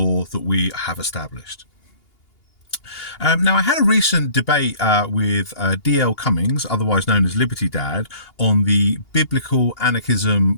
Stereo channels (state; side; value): late; right; 2.8 ms